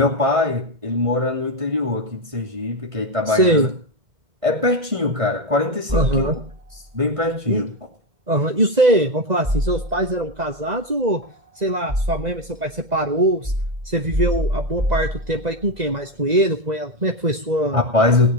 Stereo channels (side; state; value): left; late; 2.0 ms